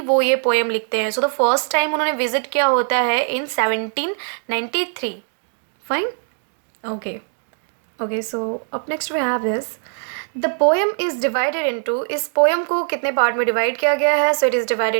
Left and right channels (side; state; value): left; silent; 65 dB below the other